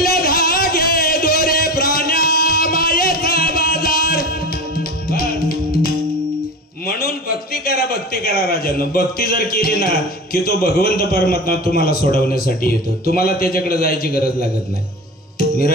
धागे दोरे प्राण्या मायेचा बाजार. म्हणून भक्ती करा राजांनो. भक्ती जर केली ना की तो भगवंत परमात्मा तुम्हाला सोडवण्यासाठी येतो. तुम्हाला त्याच्याकडे जायची गरज लागत नाही. मी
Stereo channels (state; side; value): normal; both; correlation 0.30